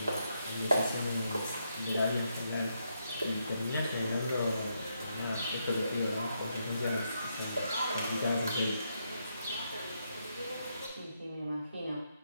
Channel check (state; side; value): inverted; both; correlation -0.80